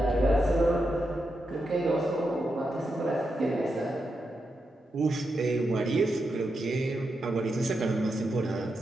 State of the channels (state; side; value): normal; both; correlation 0.86